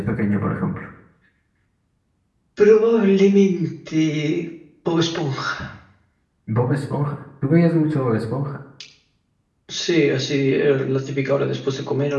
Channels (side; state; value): both; identical; correlation 1.00